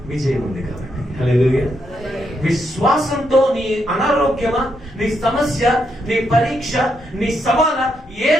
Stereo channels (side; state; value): both; normal; correlation 0.79